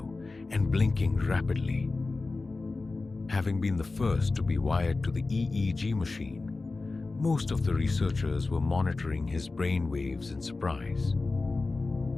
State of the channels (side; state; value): right; quieter; 3.6 dB